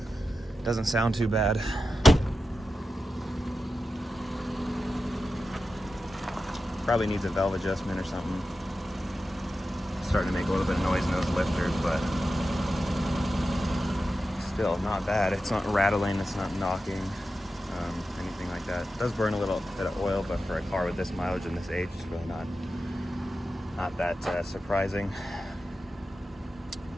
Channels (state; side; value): normal; both; correlation 0.92